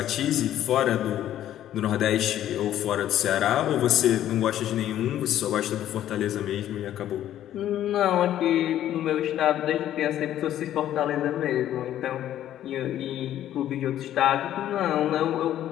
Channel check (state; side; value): quieter; right; 11.9 dB